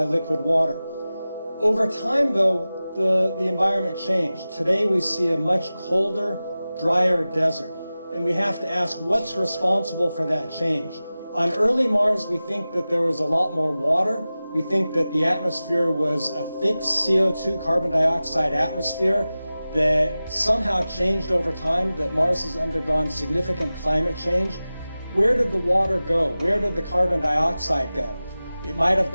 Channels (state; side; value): inverted; both; correlation -0.96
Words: liquid water. Over time, though, the environment changed. Today we see a much colder, drier desert. And we have to ask, what's responsible for that change? On early Mars, we think that there was a lot more water. We think that the atmosphere was a thick CO2, carbon dioxide atmosphere that somehow changed over time, that Mars has undergone significant climate change. Where did the water go? Where did the carbon dioxide go? It might have